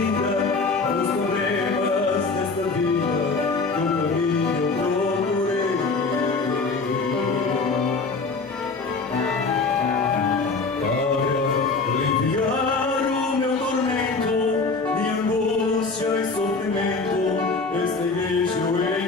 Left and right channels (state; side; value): quieter; right; 4.1 dB